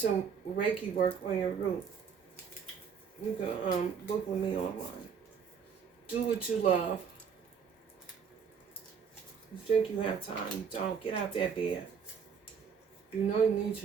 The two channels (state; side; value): quieter; left; 6.7 dB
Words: Reiki work on your root. You can book with me online. Do what you love. You think you have time, you don't. Get out that bed. You know you need